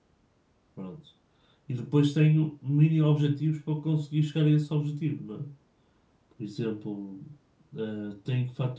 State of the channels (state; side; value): identical; both; correlation 1.00